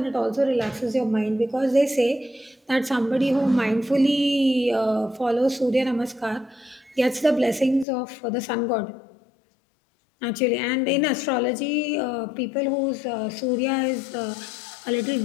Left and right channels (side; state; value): right; drops out; at 7.9 s